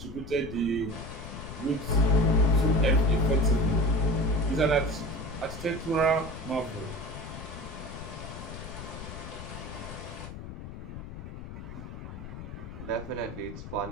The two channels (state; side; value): noise; left; rumble, 10 dB below the sound